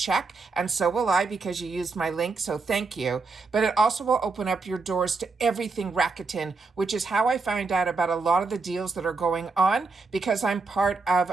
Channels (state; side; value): quieter; left; 4.2 dB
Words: And so will I because you used my link. So thank you. But it also will open up your doors to everything Rakuten, which is how I find out about a lot of the deals that are going on because I'm part